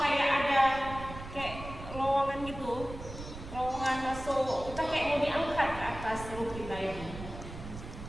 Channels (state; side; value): noise; right; rumble, 11 dB below the sound